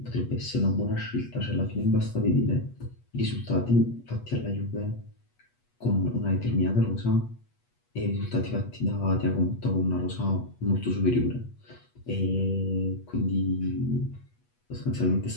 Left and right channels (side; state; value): right; late; 8.2 ms